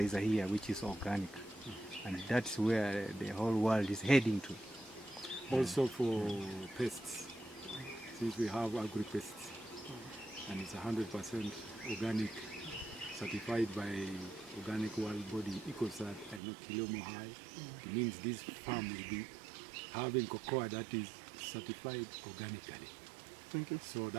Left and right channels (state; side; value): drops out; left; at 16.4 s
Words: here, which is organic. And that's where the whole world is heading to. Also for pests, since we have agri-pests, and it's 100% organic, certified by organic world body EcoCert, I know Kilomo High. It means this farm will be having cocoa that is certified organically. Thank you. So